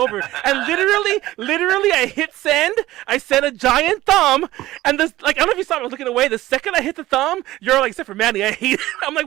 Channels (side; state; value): left; quieter; 16.3 dB